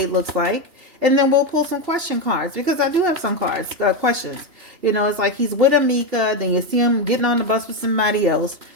looks like, and then we'll pull some question cards because I do have some cards, questions. It's like he's with Ammika, then you see him getting on the bus with somebody else.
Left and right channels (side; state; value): left; late; 2.8 ms